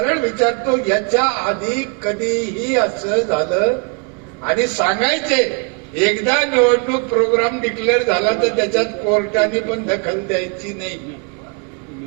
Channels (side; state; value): left; quieter; 36.1 dB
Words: विचारतो, याच्या आधी कधीही असं झालं? आणि सांगायचे, एकदा निवडणूक प्रोग्राम डिक्लेअर झाला तर त्याच्यात कोर्टाने पण दखल द्यायची नाही.